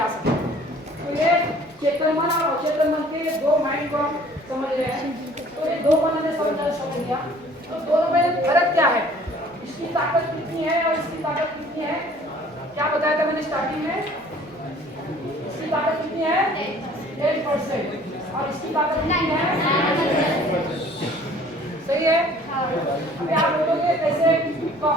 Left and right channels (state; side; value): normal; both; correlation 0.53